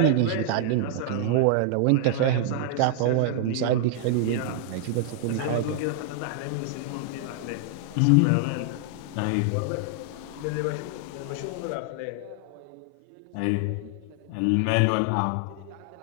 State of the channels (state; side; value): different; both; correlation 0.00